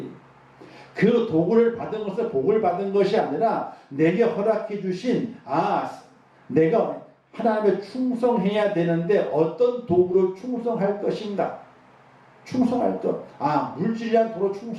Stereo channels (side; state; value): both; identical; correlation 1.00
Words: 그 도구를 받은 것은 복을 받은 것이 아니라 내게 허락해 주신 내가 하나님에 충성해야 되는데 어떤 도구로 충성할 것인가? 충성할 것. 물질이란 도로